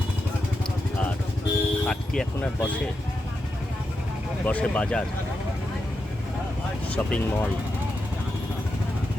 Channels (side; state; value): both; normal; correlation 0.87